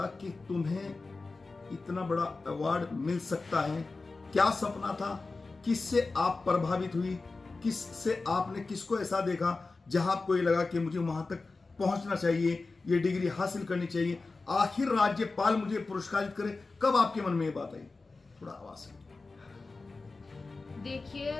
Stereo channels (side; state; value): right; quieter; 3.7 dB